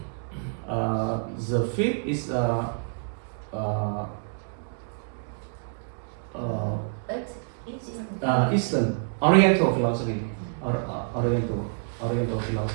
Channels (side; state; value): left; silent; digital silence